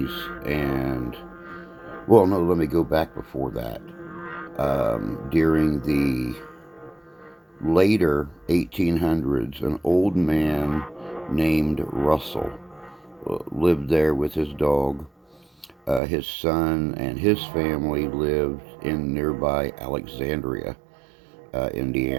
and well, no, let me go back before that. During the later 1800s, an old man named Russell lived there with his dog. His son and his family lived in nearby Alexandria,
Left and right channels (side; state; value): left; drops out; at 16.0 s